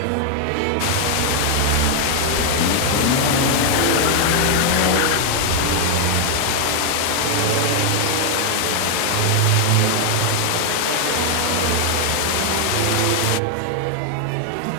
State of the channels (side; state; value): both; different; correlation 0.00